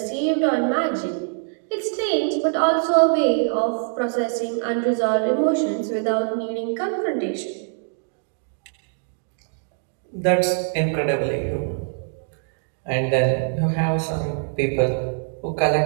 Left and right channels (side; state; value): left; silent; 63 dB below the other